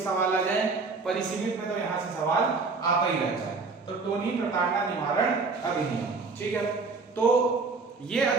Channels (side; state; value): left; quieter; 4.2 dB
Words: सवाल आ जाए, परिसीमित में तो यहाँ से सवाल आता ही रहता है। तो टोनी प्रताड़ना निवारण अधिनियम, ठीक है, तो ये